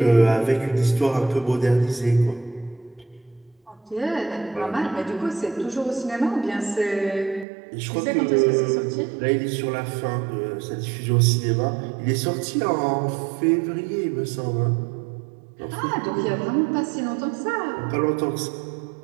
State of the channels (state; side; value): drops out; left; at 7.5 s